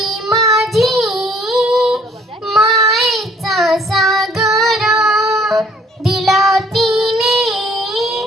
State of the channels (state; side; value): normal; both; correlation 0.59